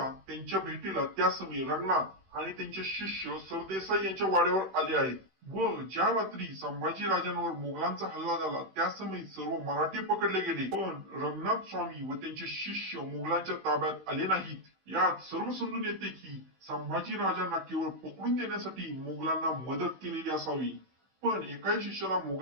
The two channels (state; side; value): late; left; 16 ms